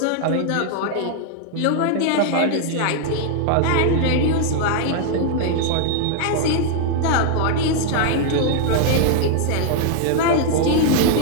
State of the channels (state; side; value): different; both; correlation 0.00